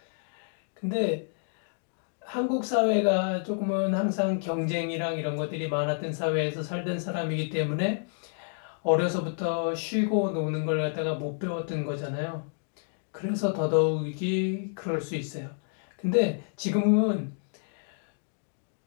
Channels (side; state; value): right; silent; digital silence